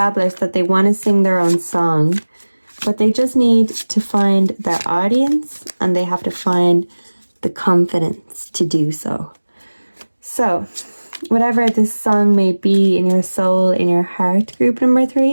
that they want to sing their own song, but they just need to find their audience and they have to find the confidence to do so. So, whatever this song may be in your soul, in your heart, group number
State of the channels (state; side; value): inverted; both; correlation -1.00